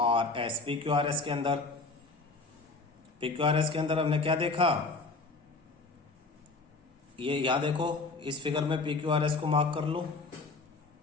के अंदर हमने क्या देखा, ये यहां देखो इस फिगर में PQRS को मार्क कर लो,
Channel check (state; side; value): quieter; right; 3.7 dB